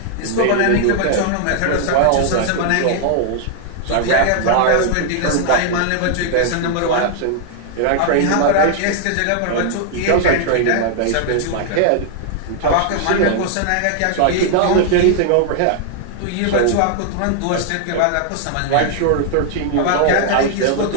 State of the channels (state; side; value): different; both; correlation 0.00